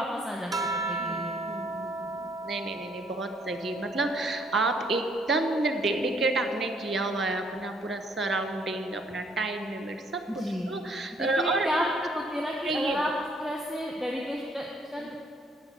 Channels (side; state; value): both; normal; correlation 0.65